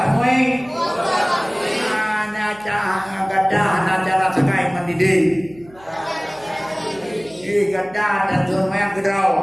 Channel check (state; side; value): noise; right; hum, 25 dB below the sound